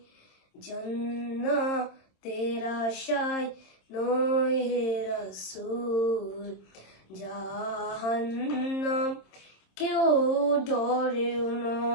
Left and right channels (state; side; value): late; right; 26 ms